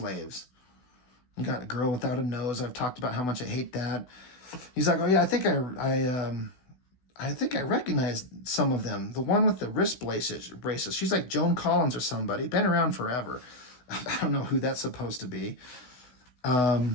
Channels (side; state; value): right; late; 16 ms